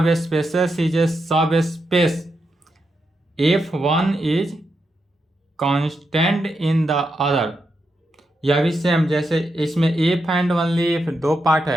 subspaces is a subspace if one is constant in the other. यह भी सेम, जैसे इसमें इफ एंड ओनली इफ दो पार्ट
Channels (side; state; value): both; normal; correlation 0.85